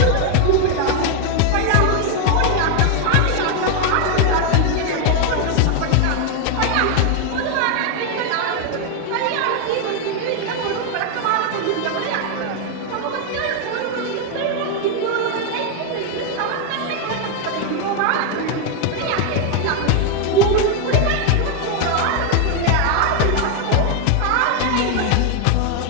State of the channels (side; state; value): both; different; correlation 0.01